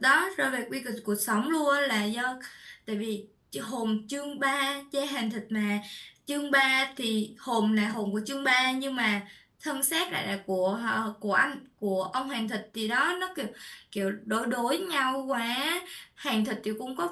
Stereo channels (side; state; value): both; identical; correlation 1.00